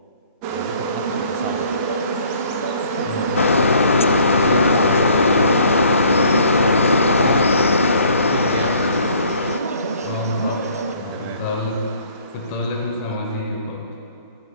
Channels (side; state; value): both; inverted; correlation -0.56